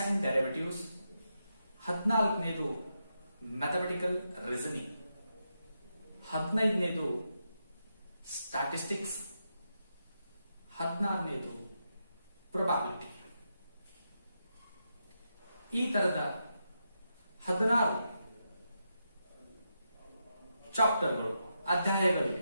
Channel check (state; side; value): inverted; both; correlation -0.85